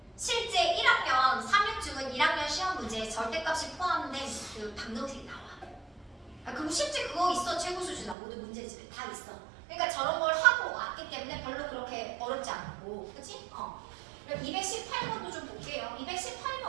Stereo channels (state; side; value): drops out; left; at 8.2 s